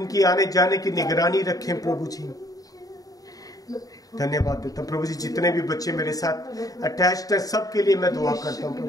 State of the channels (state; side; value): late; right; 0.18 ms